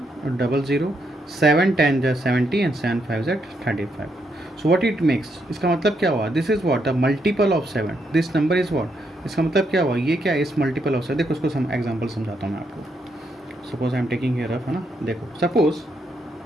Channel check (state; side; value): normal; both; correlation 0.78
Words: 00, 7 10 ज़ा 70 एंड 7 5 ज़ा 35. So what it makes? इसका मतलब क्या हुआ? This is what the multiple of 7. This number is what? इसका मतलब क्या हुआ? ये क्या है? इस मल्टीपल ऑफ 7. देखो उसको एग्जाम्पल समझाता हूँ मैं आपको. Suppose I am taking here rough, है ना. देखो सपोज